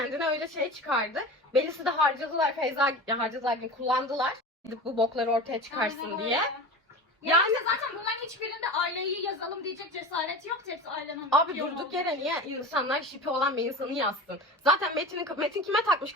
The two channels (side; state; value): both; normal; correlation 0.32